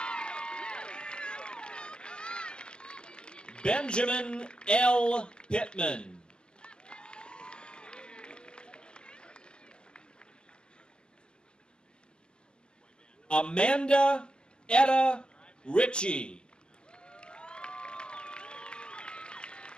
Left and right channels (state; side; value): late; right; 0.051 ms